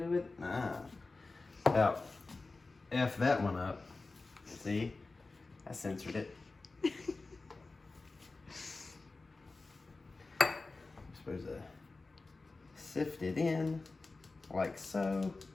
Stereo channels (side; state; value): right; quieter; 3.6 dB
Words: do with it? About F that one up. See? I censored it. I'm supposed to sift it in like so.